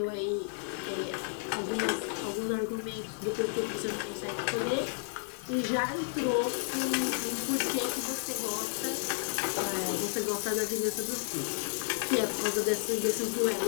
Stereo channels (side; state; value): right; silent; 56 dB below the other